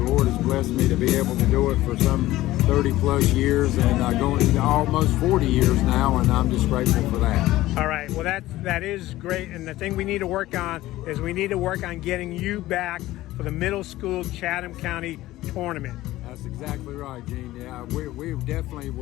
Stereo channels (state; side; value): quieter; right; 16.4 dB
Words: Lord has blessed me to be able to do it for some 30-plus years, and going into almost 40 years now, and I'm just grateful for that. All right, well, that is great, and the thing we need to work on is we need to work on getting you back for the middle school Chatham County tournament. That's exactly right, Gene. Yeah, we definitely